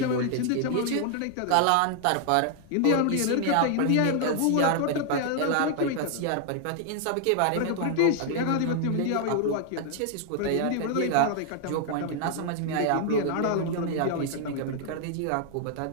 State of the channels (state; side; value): different; both; correlation 0.00